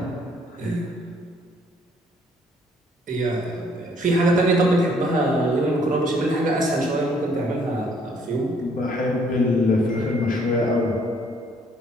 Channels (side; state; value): both; normal; correlation 0.63